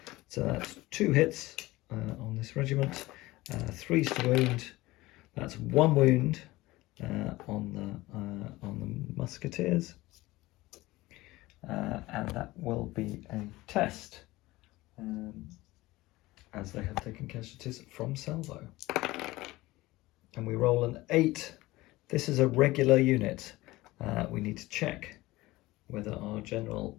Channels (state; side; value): quieter; right; 19.1 dB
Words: So that's 2 hits on this regiment, 3s to wound. That's 1 wound. On the musketeers, and that will be a test, as they have taken casualties from salvo. And we roll an 8. This is a regular unit. We need to check whether our general